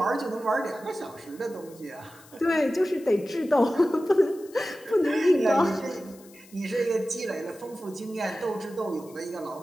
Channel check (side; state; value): left; noise; hiss, 24 dB below the sound